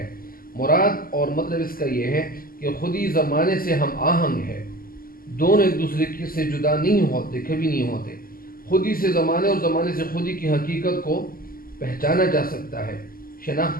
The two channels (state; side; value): late; right; 0.42 ms